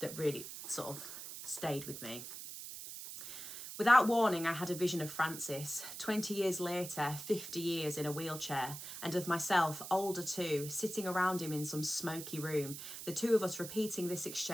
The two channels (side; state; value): right; noise; hiss, 9 dB below the sound